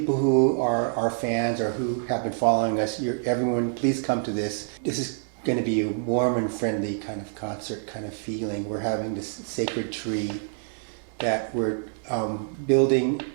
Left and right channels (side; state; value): left; silent; 61 dB below the other